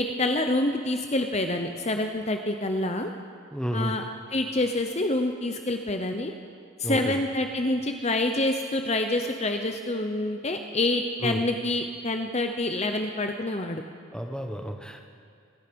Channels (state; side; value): normal; both; correlation 0.50